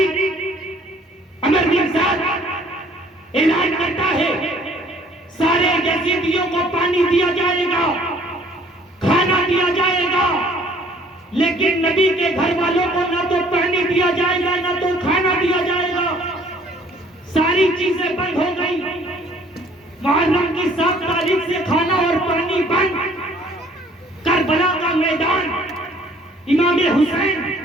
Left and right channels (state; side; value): normal; both; correlation 0.57